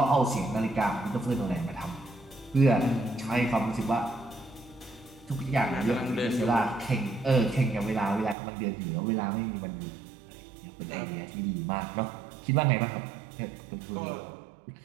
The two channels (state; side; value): drops out; left; at 8.3 s